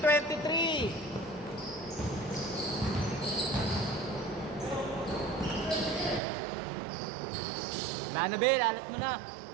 Wala na, Bel. Alat mo na.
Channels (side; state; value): left; drops out; at 6.2 s